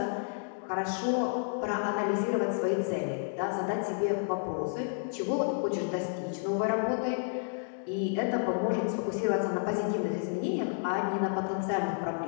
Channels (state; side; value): silent; right; digital silence